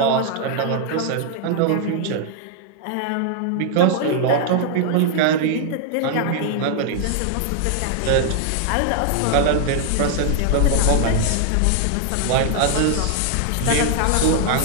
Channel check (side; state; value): both; different; correlation 0.00